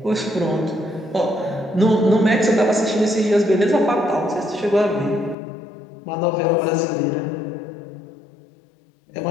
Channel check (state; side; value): drops out; right; at 5.4 s